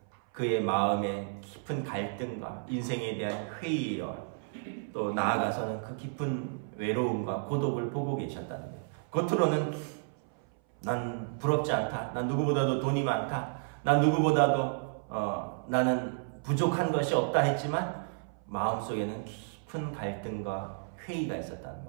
그의 마음의 깊은 갈등과 인생에 대한 회의와 또 나아가서는 그 깊은 외로움과 고독을 보고 계셨다는 거예요. 겉으로는 난 부럽지 않다. 난 누구보다도 돈이 많다. 난 누구보다도 나는 부족한 것이 없다 했지만 마음속에는 깊은 갈등과 회의가 있었다는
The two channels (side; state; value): left; silent; 57 dB below the other